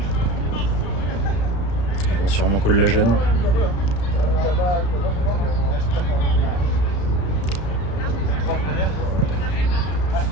Ils vont sûrement call la gêne.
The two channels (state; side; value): late; right; 34 ms